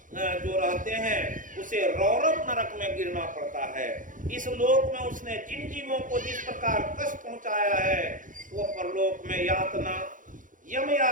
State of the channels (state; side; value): late; left; 0.38 ms